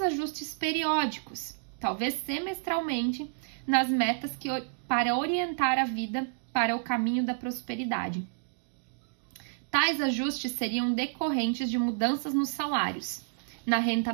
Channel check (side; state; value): left; silent; digital silence